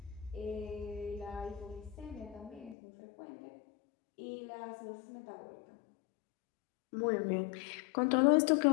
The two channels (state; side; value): drops out; right; at 2.8 s